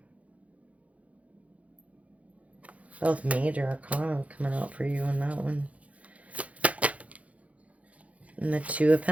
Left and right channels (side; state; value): left; late; 0.066 ms